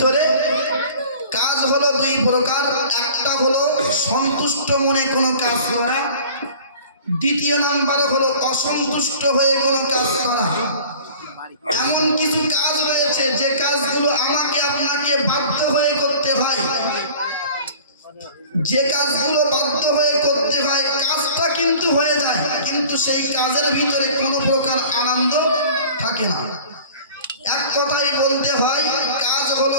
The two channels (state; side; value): inverted; both; correlation -0.45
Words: কাজ হলো দুই প্রকার। একটা হলো সন্তুষ্ট মনে কোনো কাজ করা, দ্বিতীয় নাম্বার হলো অসন্তুষ্ট হয়ে কোনো কাজ করা। এমন কিছু কাজ রয়েছে যে কাজগুলো আমাকে আপনাকে বাধ্য হয়ে করতে হয়, যে কাজগুলো বাধ্য হয়ে করতে হয় কাজটা কিন্তু হয়ে যায়, কিন্তু সেই কাজের ভিতরে কোনো প্রকার আনন্দ থাকে না। এক কথাই বলতে হয় কাজ হলো